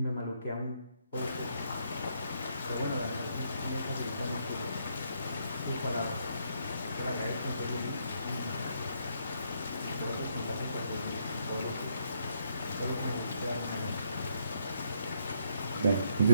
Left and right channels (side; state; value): both; inverted; correlation -0.73